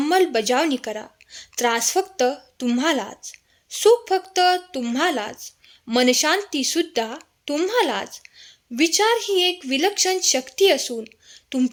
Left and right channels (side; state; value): both; identical; correlation 1.00